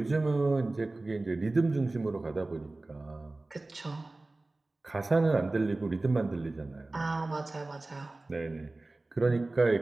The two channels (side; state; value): left; quieter; 3.0 dB